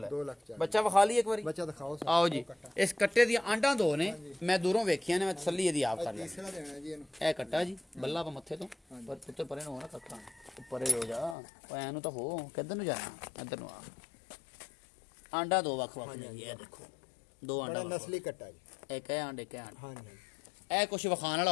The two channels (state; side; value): drops out; right; at 11.4 s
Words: ਹੈ 2,40,000 ਬੱਚਾ ਵਿਖਾ ਲਈ ਇੱਕ ਵਾਰੀ ਬੱਚਾ ਦਿਖਾਓ ਆਓ ਜੀ ਇਸ ਕੱਟੇ ਦੀਆਂ ਆਂਡਾਂ 2 ਨੇ ਮੈਂ ਦੂਰੋਂ ਵੇਖੀਆਂ ਨੇ ਮੈਂ ਤਸੱਲੀ ਇਹਦੀ ਆਪ ਕਰ ਲਿਆ ਤੀਸਰਾ ਦੇਣਾ ਜੀ ਇਹਨੂੰ ਇਹ ਕੱਟਾ ਜੀ ਬੱਲਾ ਪਾ ਮੱਥੇ ਤੋਂ ਪਰ ਉੱਤੇ ਪਰੇ ਨੂੰ ਹੋ ਨਾ ਕੱਟਾ ਉੱਪਰੇ ਹੋ ਜਾ ਓਏ ਐਨੂੰ ਤਾਂ ਹੋ ਕਿੱਧਰ ਨੂੰ ਜਾਣਾ ਇੱਧਰ ਨੂੰ ਆ ਆਂਡਾ 2 ਵੱਖ ਨੇ ਇਹ ਦੇਖੋ 2 ਆਂਡਾ ਨਸਲੀ ਕੱਟਾ ਜੀ ਇੱਕ ਹੈ ਆਂਡੇ ਹਾਂਜੀ ਇਹ ਕੁਝ ਵਿਖਾਣ ਵਾਲਾ